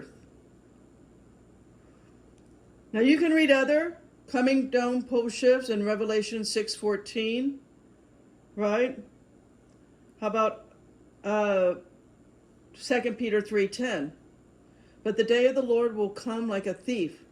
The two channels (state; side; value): identical; both; correlation 1.00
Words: Now you can read other coming dome pole shifts in Revelation 6:14, right? How about 2 Peter 3:10? But the day of the Lord will come like a thief,